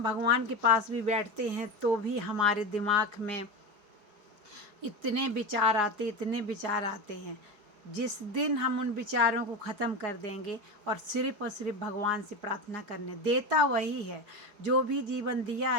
भगवान के पास भी बैठते हैं तो भी हमारे दिमाग में इतने विचार आते हैं। जिस दिन हम उन विचारों को ख़त्म कर देंगे और सिर्फ भगवान से प्रार्थना करने, देता वही है। जो भी जीवन दिया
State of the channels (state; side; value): late; left; 4.8 ms